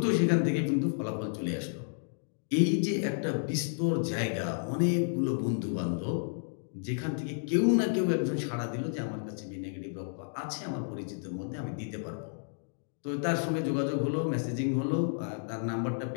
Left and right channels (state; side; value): silent; right; digital silence